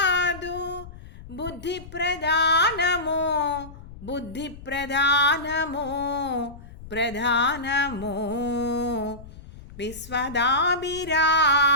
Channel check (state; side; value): noise; left; rumble, 17 dB below the sound